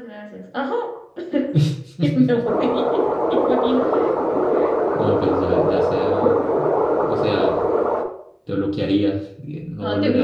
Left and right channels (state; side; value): identical; both; correlation 1.00